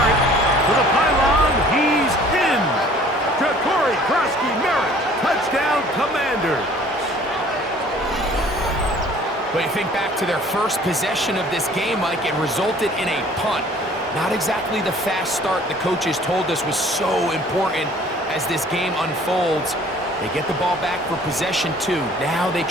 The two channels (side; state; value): both; normal; correlation 0.53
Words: To the pylon, he's in. To Krosky-Merritt. Touchdown, Commanders. But you think back to their first possession of this game, Mike, it resulted in a punt. Not exactly the fast start the coaches told us was so important as this game unfolds. They get the ball back for possession 2. Now they